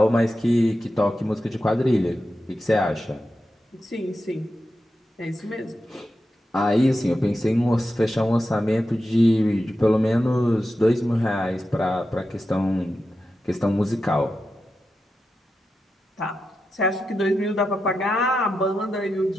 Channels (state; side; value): normal; both; correlation 0.90